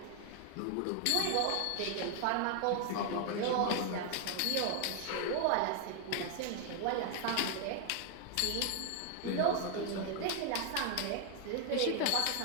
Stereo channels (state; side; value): different; both; correlation 0.00